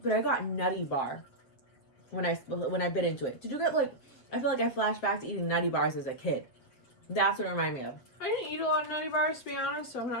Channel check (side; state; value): right; late; 7.8 ms